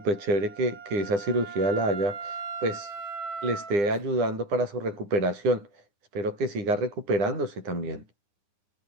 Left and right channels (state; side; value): late; left; 9.8 ms